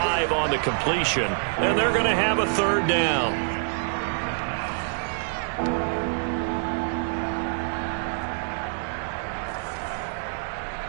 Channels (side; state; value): left; silent; digital silence